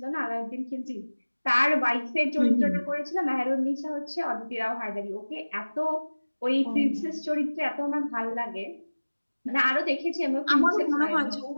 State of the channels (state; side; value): inverted; both; correlation -1.00